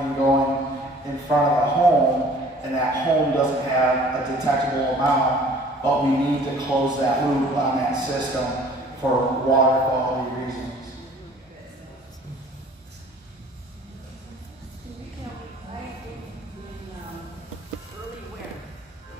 going in front of a home, and that home doesn't have a detectable amount, but we need to close that loop on that system for water quality reasons.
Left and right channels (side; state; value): both; normal; correlation 0.52